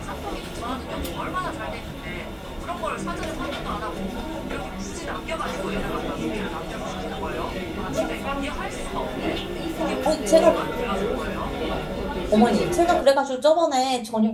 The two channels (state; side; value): identical; both; correlation 1.00